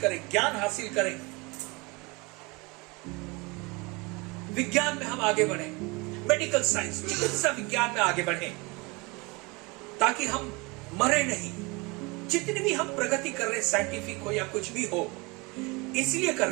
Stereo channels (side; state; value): left; quieter; 26.5 dB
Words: ज्ञान हासिल करें, विज्ञान में हम आगे बढ़ें, मेडिकल साइंस, चिकित्सा विज्ञान में आगे बढ़ें, ताकि हम मरे नहीं। जितनी भी हम प्रगति कर रहे, साइंटिफिक हो या कुछ भी हो, इसलिए कर